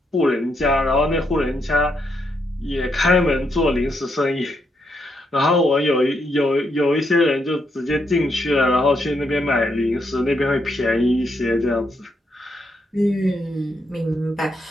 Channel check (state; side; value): normal; both; correlation 0.78